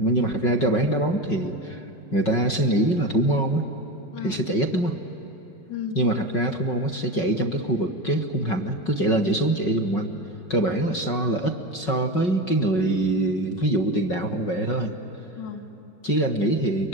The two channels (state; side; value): late; right; 5.4 ms